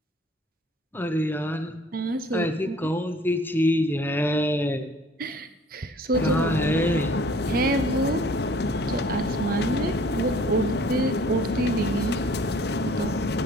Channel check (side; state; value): both; normal; correlation 0.53